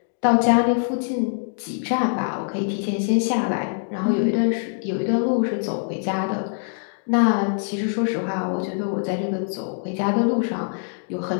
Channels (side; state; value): right; silent; digital silence